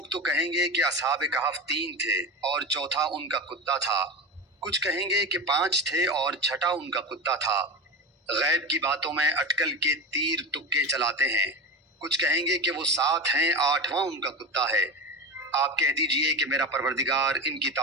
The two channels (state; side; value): normal; both; correlation 0.24